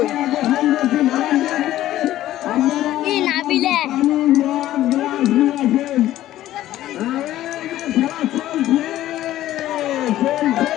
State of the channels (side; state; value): right; quieter; 13.9 dB